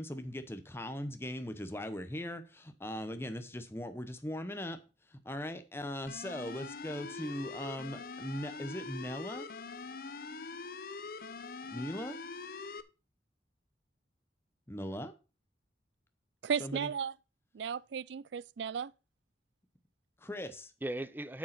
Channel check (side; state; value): both; normal; correlation 0.37